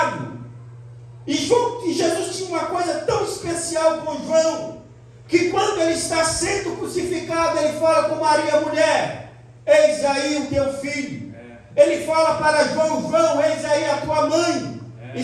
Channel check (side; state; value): both; identical; correlation 1.00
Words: E Jesus tinha uma coisa tão especial com João, que quando ele está sendo crucificado, ele fala com Maria, mulher, eis aí o teu filho. Ele fala para João, João, eis aí a tua mãe. E